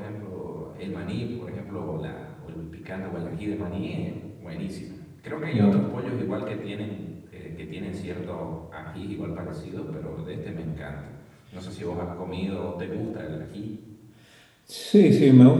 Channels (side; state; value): both; identical; correlation 1.00